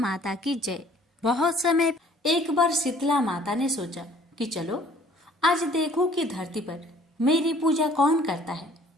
की जय। बहुत समय एक बार शीतला माता ने सोचा कि चलो आज देखो कि धरती पर मेरी पूजा कौन करता है,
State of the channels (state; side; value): normal; both; correlation 0.55